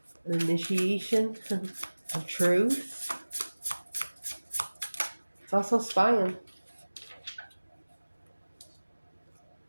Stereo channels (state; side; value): inverted; both; correlation -1.00